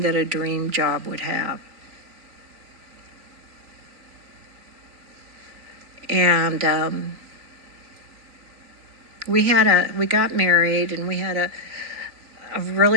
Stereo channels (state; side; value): late; left; 3.5 ms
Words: that a dream job would have. And we got married, and we had a